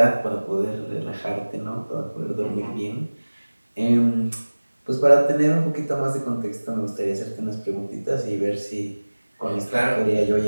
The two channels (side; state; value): both; inverted; correlation -1.00